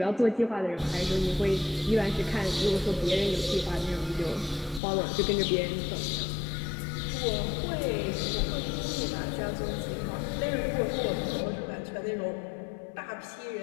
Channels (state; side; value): drops out; right; at 4.8 s